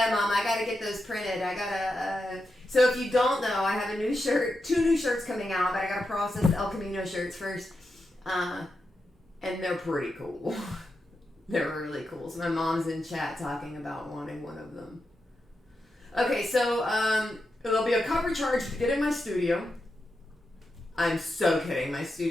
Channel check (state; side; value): normal; both; correlation 0.88